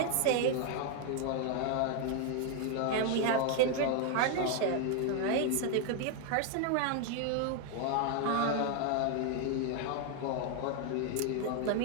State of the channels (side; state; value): both; different; correlation 0.00